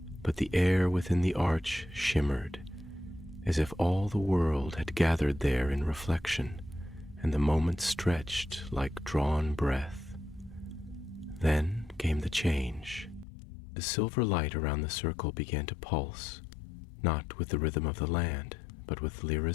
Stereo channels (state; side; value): drops out; right; at 13.2 s